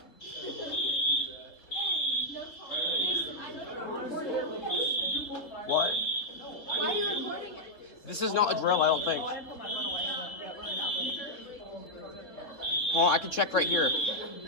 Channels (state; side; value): late; right; 3.8 ms